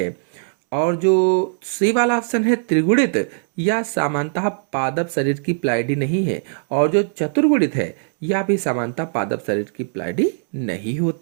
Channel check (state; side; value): silent; left; 66 dB below the other